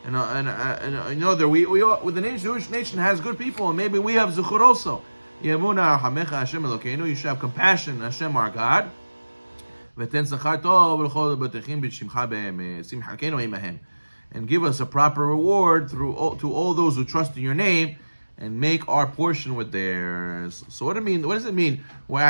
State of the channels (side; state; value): both; inverted; correlation -1.00